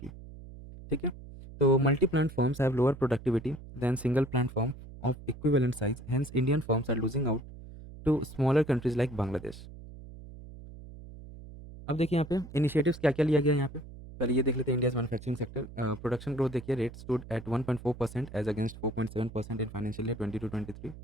ठीक है. तो multi plant firms have lower productivity than single plant firm of equivalent size. Hence, Indian firms are losing out to smaller countries like Bangladesh. अब देखिए यहाँ पे initiatives क्या क्या लिया गया यहाँ पे. पहले ये देख लेते हैं India's manufacturing sector. Production growth देखिए, rate stood at 1.4% as against 4.7% in financial year 22-23,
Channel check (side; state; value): right; noise; hum, 15 dB below the sound